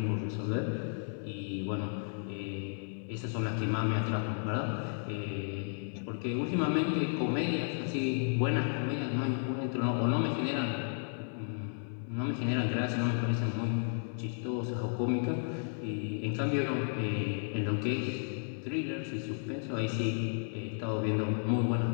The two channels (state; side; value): silent; right; 56 dB below the other